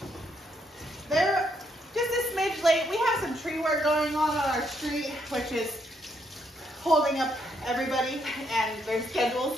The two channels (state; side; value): normal; both; correlation 0.75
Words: They're just a smidge late. We have some tree work going on our street, which is holding up everybody and their